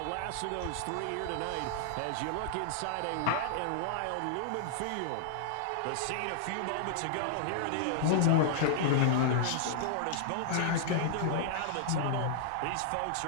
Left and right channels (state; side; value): different; both; correlation -0.01